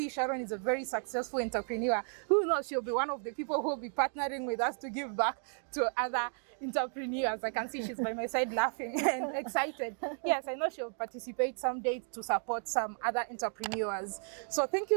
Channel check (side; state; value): left; silent; 55 dB below the other